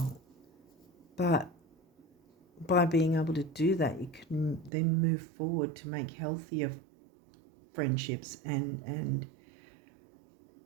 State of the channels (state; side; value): drops out; left; at 4.7 s